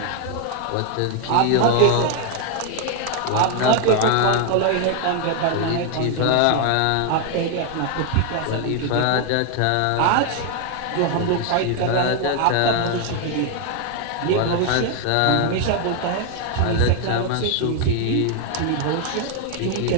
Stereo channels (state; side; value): different; both; correlation 0.01